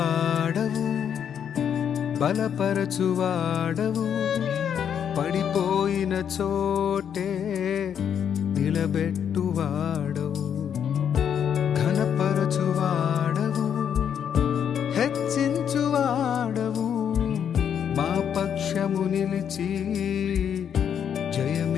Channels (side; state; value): right; quieter; 8.4 dB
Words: బలపరచువాడవు, పడిపోయిన చోటే నిలబెట్టువాడవు, ఘనపరచువాడవు, హెచ్చించువాడవు, మా పక్షము నిలిచి